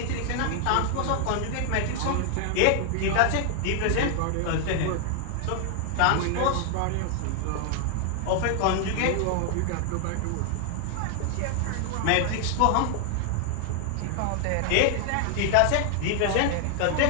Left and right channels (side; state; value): both; different; correlation 0.00